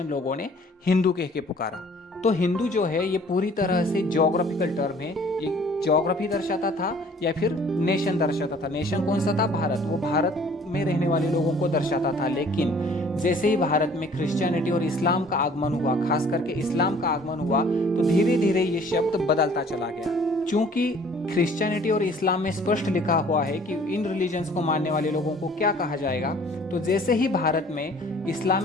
लोगों ने हिंदू कह के पुकारा। तो हिंदू जो है ये पूरी तरह से ज्योग्राफिकल टर्म है। ये ज्योग्राफी दर्शाता था या फिर नेशन दर्शाता था। नेशन कौन सा था? भारत। वो भारत में रहने वाले लोगों को दर्शाता था। लेकिन जैसे ही भारत में क्रिश्चियनिटी और इस्लाम का आगमन हुआ, खास करके इस्लाम का आगमन हुआ, तो धीरे धीरे ये शब्द बदलता चला गया। चूंकि क्रिश्चियनिटी और इस्लाम में स्पष्ट लिखा हुआ है कि इन रिलीजन्स को मानने वाले लोगों को क्या कहा जाएगा, तो जैसे ही भारत में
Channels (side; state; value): both; normal; correlation 0.54